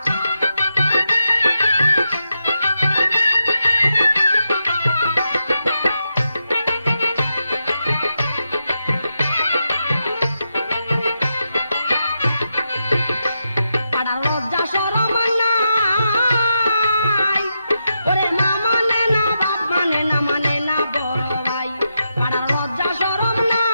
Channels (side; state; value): both; inverted; correlation -0.86